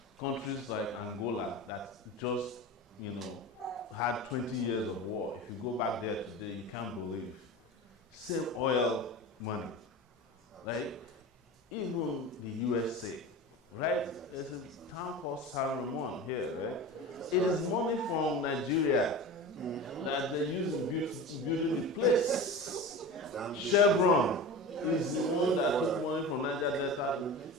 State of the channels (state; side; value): normal; both; correlation 0.31